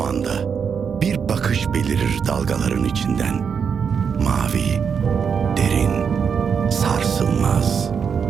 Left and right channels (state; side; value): quieter; left; 6.7 dB